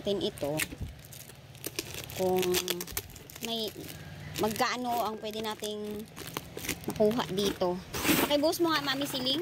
ito kung may magkaano ang pwede nating makuha dito. Pakibuhos mo nga, Mami Siling.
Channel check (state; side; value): identical; both; correlation 1.00